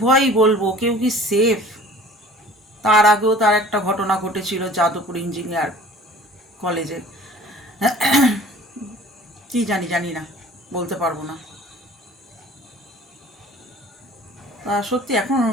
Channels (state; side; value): normal; both; correlation 0.47